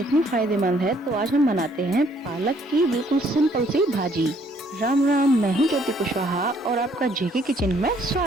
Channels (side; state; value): both; normal; correlation 0.65